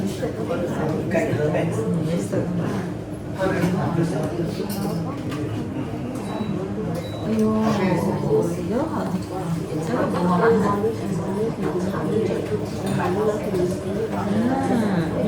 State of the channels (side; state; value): both; identical; correlation 1.00